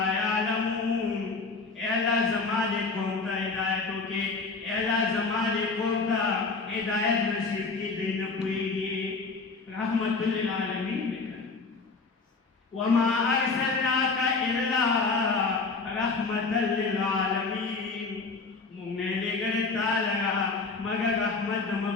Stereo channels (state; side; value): quieter; right; 4.2 dB